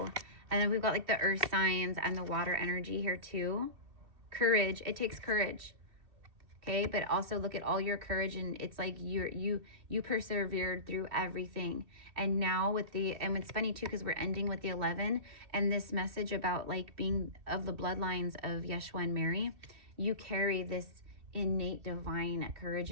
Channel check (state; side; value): late; left; 2.6 ms